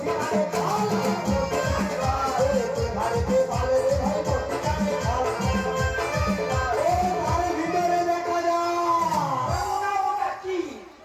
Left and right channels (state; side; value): identical; both; correlation 1.00